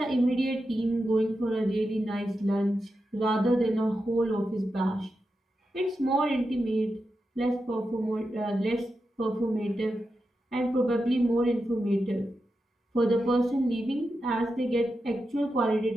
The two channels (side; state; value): both; normal; correlation 0.89